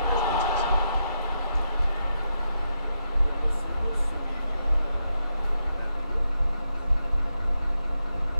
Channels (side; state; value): both; inverted; correlation -0.84